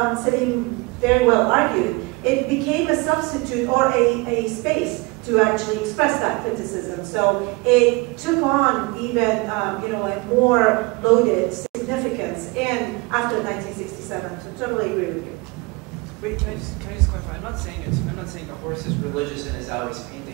Salim very well argued, it became a substitute or a space to actually express that criticism. So it took on even, you know, a more loaded significance after 1967. So totally agree with you. Wait, can I just clarify? I'm not saying the horse is religious in Azawi's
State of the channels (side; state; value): left; quieter; 25.6 dB